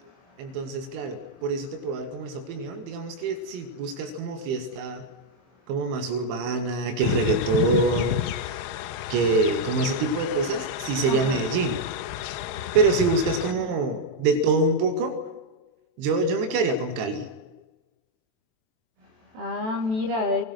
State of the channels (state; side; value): late; left; 23 ms